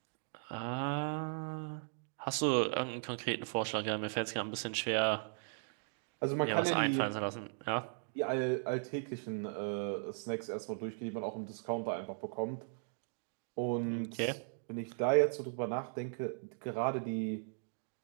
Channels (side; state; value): left; silent; digital silence